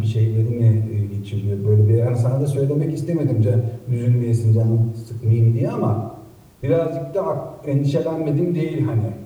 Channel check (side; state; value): both; identical; correlation 1.00